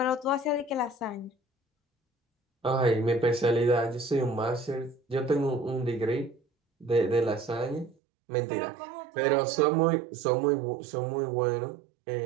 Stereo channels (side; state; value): left; drops out; at 8.0 s